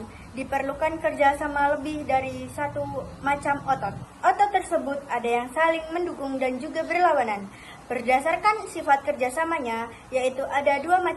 diperlukan kerjasama lebih dari satu macam otot. Otot tersebut ada yang saling mendukung dan juga berlawanan. Berdasarkan sifat kerjasamanya, yaitu ada dua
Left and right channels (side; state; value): both; identical; correlation 1.00